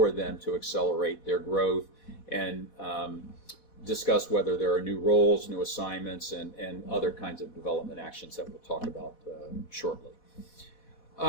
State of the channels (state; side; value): late; right; 4.1 ms